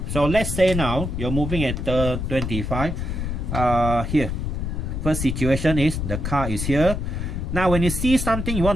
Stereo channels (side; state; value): left; noise; rumble, 3 dB below the sound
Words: So let's say now you're moving at 25. Here, first situation is the car is here. Now when you see something, you